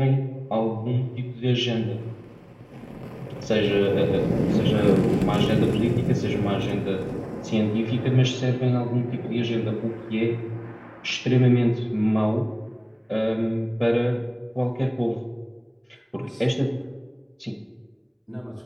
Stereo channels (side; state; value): both; identical; correlation 1.00